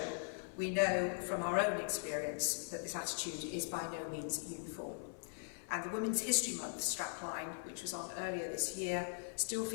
we know from our own experience that this attitude is by no means uniform. And the Women's History Month strapline, which was on earlier this year, still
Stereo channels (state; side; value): silent; right; 51 dB below the other